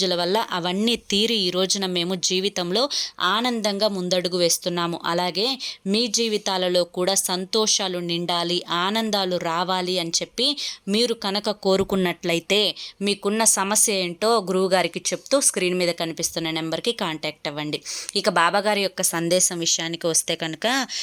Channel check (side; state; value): both; identical; correlation 1.00